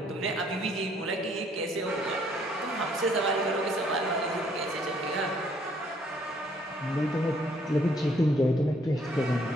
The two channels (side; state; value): both; normal; correlation 0.65